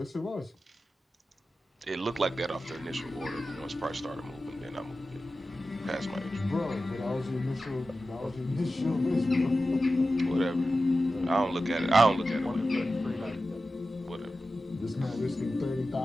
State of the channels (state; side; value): normal; both; correlation 0.93